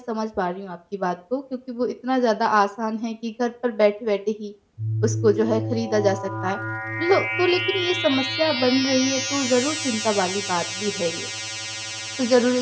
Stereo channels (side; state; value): both; identical; correlation 1.00